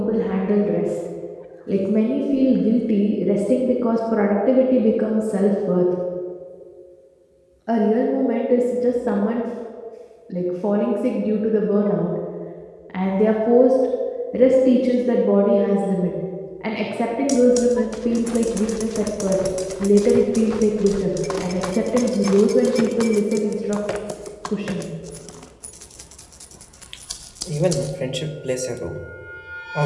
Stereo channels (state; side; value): identical; both; correlation 1.00